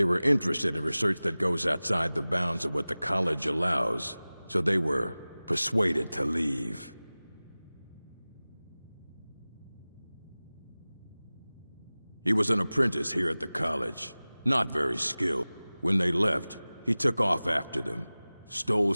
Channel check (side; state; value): both; inverted; correlation -0.98